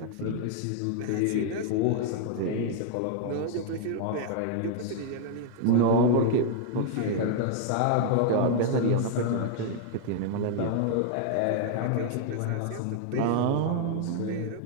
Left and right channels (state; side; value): different; both; correlation -0.01